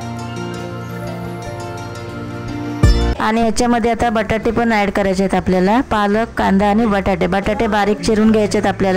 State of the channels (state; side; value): identical; both; correlation 1.00